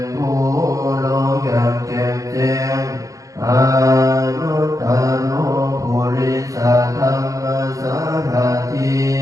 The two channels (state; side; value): late; left; 0.16 ms